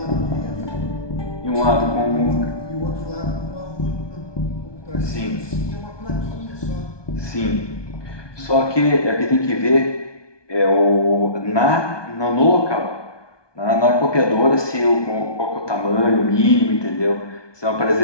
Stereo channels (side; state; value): right; late; 1.2 ms